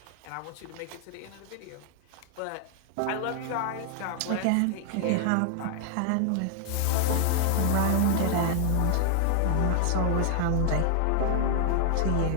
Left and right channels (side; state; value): both; different; correlation 0.00